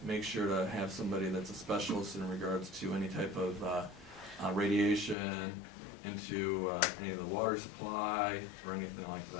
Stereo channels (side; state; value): right; drops out; at 5.2 s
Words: make sure to have somebody that's a specialist in regards to any type of radiation into any of the water supply or anything like